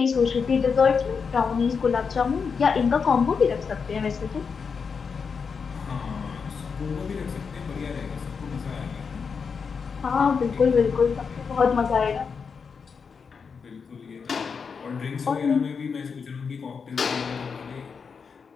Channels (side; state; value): right; quieter; 5.7 dB